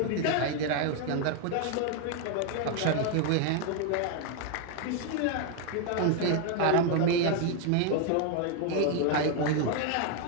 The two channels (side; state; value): both; different; correlation 0.01